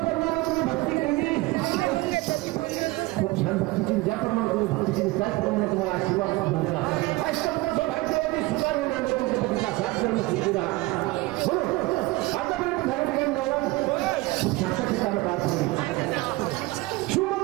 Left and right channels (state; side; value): quieter; left; 20.9 dB